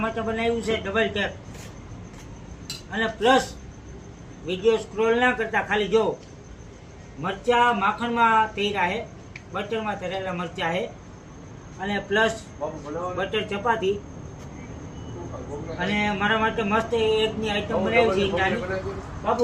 માટે બનાવ્યું છે ડબલ ટેક. અને પ્લસ વિડીયો સ્ક્રોલ ના કરતા ખાલી જો મરચા માખણમાં તૈરા છે, બટરમાં તળેલા મરચા છે અને પ્લસ બટર ચપાતી અને મારા માટે મસ્ત એગની આઈટમ બનાવી છે ઈંડાની. બાપુ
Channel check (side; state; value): both; identical; correlation 1.00